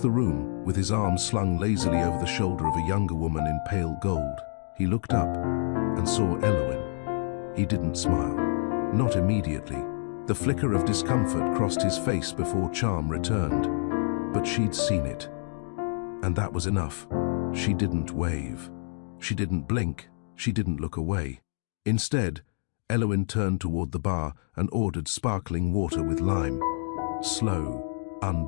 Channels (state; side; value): silent; right; digital silence